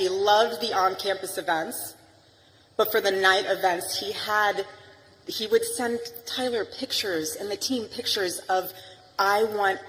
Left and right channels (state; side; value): identical; both; correlation 1.00